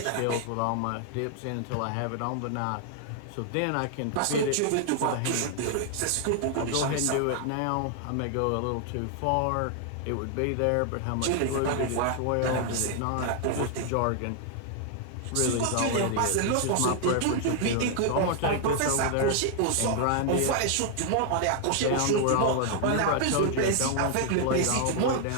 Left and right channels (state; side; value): different; both; correlation 0.00